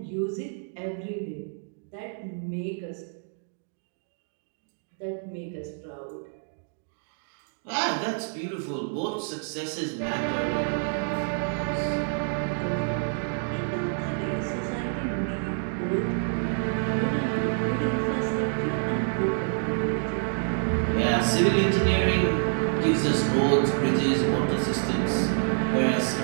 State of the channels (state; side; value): silent; left; 60 dB below the other